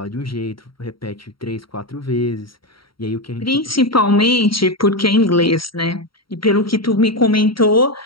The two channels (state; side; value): late; right; 0.74 ms